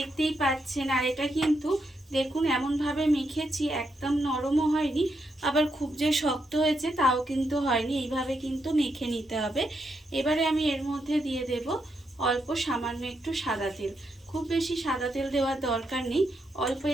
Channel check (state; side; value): normal; both; correlation 0.81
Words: পাচ্ছেন। আর এটা কিন্তু দেখুন এমনভাবে মেখেছি, একদম নরমও হয়নি আবার খুব যে শক্ত হয়েছে তাও কিন্তু হয়নি। এইভাবে কিন্তু মেখে নিতে হবে। এবারে আমি এর মধ্যে দিয়ে দেব অল্প সামান্য একটু সাদা তেল। খুব বেশি সাদা তেল দেওয়ার দরকার নেই, অল্প